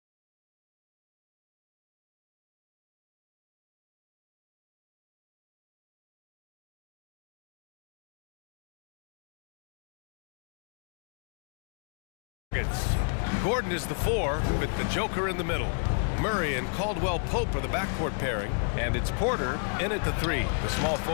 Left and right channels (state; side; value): silent; right; 56 dB below the other